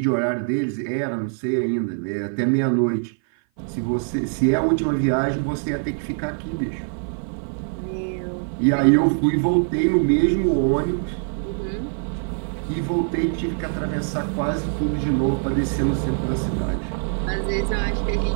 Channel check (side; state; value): left; silent; 56 dB below the other